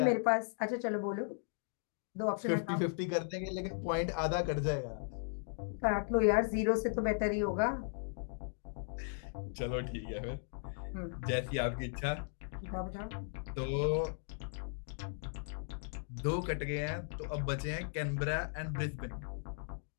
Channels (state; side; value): silent; right; digital silence